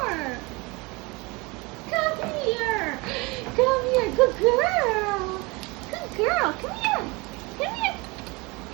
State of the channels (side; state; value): left; quieter; 25.8 dB